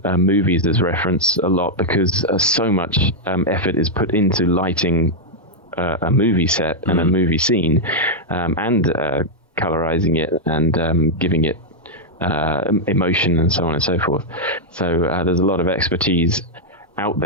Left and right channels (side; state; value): both; normal; correlation -0.03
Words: as reference a lot because so much effort is put into lighting a movie set and a movie scene, and colorizing it and giving it emotion and so on and so forth. So there's a lot of expertise out